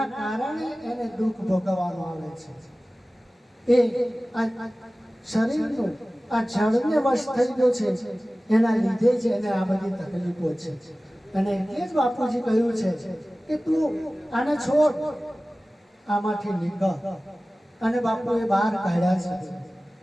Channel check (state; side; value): normal; both; correlation 0.97